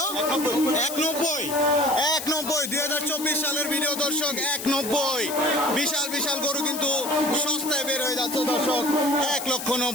190। 190 2024 সালের ভিডিও দর্শক, 190। বিশাল বিশাল গরু কিন্তু সস্তায় বের হয়ে যাচ্ছে দর্শক,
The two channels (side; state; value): left; noise; hiss, 8 dB below the sound